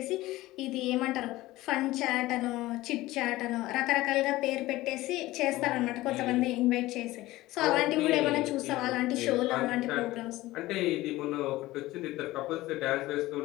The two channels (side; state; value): right; quieter; 17.7 dB